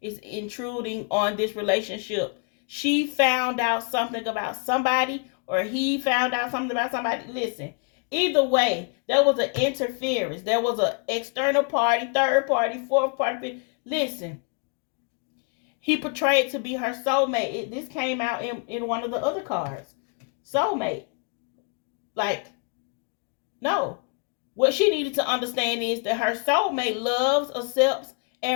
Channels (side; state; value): right; quieter; 36.4 dB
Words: is intruding on this relationship. She found out something about somebody, or he found out something about somebody. Listen, either way, there was an interference. There was an external party, third party, fourth party. Listen, he portrayed to be her soulmate. This came out in one of the other cards. Soulmate. Like, no. What she needed to understand is that her soulmate loves, accepts,